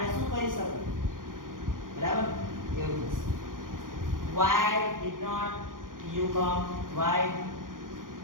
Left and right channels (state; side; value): late; left; 0.90 ms